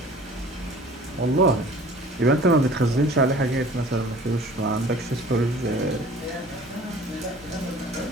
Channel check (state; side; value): normal; both; correlation 0.47